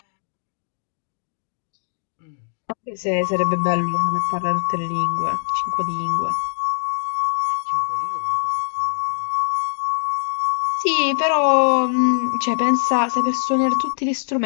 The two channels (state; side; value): silent; right; 62 dB below the other